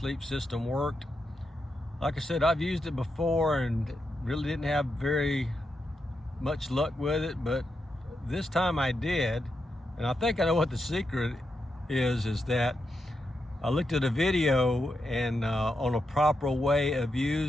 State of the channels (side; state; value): both; normal; correlation 0.85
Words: system worked. Like I said, I've used it before and really didn't have very much luck with it, but this time I did. And I think I know what the secret is that I looked at a video and on a proper way of